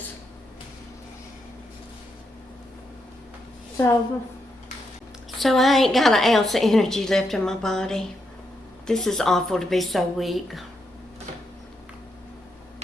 So I ain't got an ounce of energy left in my body. This is awful to be so weak.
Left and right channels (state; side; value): normal; both; correlation 0.81